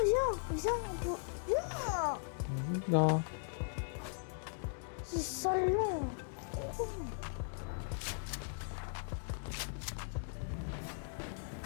on peut... Viens. là. C'est salon. C'est trop long.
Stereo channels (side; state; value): right; silent; digital silence